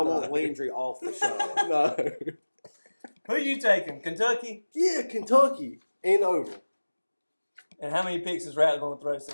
No. want Landry off the show. No. Who you taking? Kentucky? Yeah, Kentucky ain't over. And how many picks is Rattler going to throw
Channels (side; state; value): both; inverted; correlation -1.00